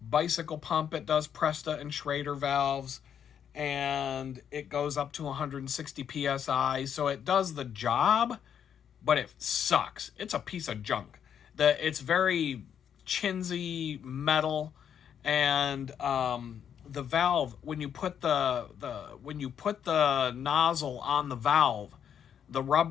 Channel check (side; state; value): right; quieter; 8.5 dB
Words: bicycle pump. It does Presta and Schrader valves, and it goes up to 160 psi. So it does the job, but it sucks. It's a piece of junk. It's very chintzy metal, and the valve, when you put the nozzle on the valve, the